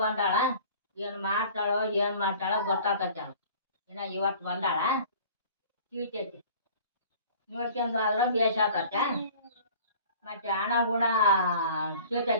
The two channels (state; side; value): inverted; both; correlation -0.46